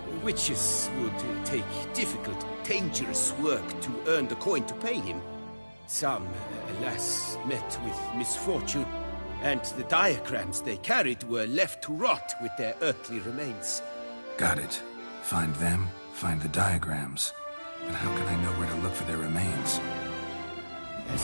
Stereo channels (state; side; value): inverted; both; correlation -1.00